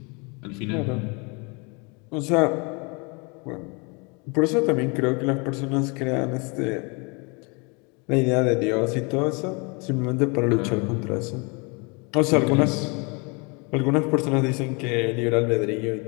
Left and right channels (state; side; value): quieter; right; 31.3 dB